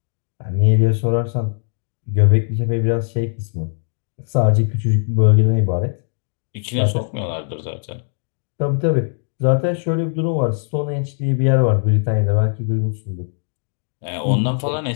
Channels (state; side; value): silent; right; digital silence